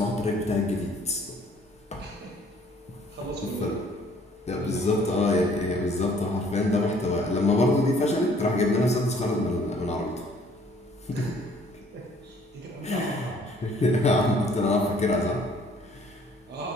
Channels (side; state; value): both; normal; correlation 0.59